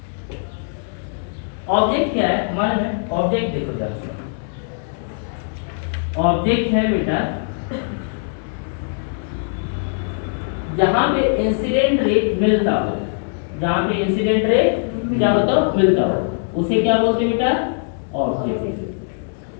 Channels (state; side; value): silent; right; 65 dB below the other